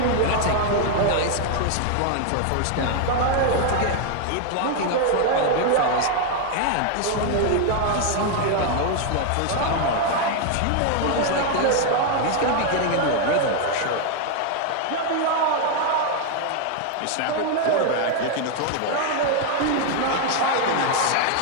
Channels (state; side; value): different; both; correlation 0.01